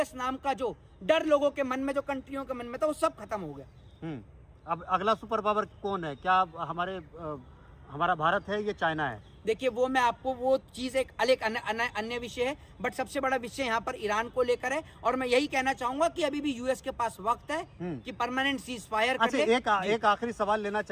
नाम का जो डर लोगों के मन में, जो कंट्रियों के मन में था, वो सब खत्म हो गया। अब अगला सुपर पावर कौन है? क्या हमारा भारत है, ये चाइना है? देखिए वो मैं आपको, वो चीज एक अलग अन्य विषय है, बट सबसे बड़ा विषय यहाँ पर ईरान को लेकर है। और मैं यही कहना चाहूंगा कि अभी भी यूएस के पास वक्त है कि परमानेंट सीज फायर कर ले। एक आखिरी सवाल लेना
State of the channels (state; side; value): identical; both; correlation 1.00